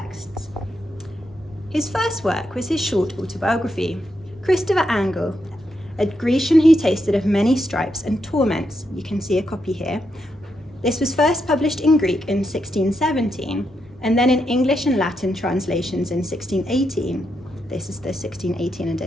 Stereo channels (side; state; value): both; normal; correlation 0.82